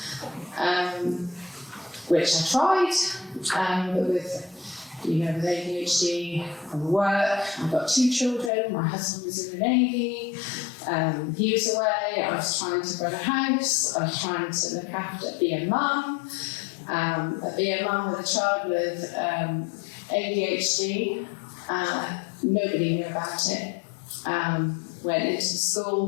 which I tried, but with ADHD and work, I've got 2 children. My husband was in the Navy, he was away. I was trying to run a house. I was trying to look after, be a mum with a child with ADHD. Nobody knew about it. Went into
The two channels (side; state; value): right; drops out; at 8.5 s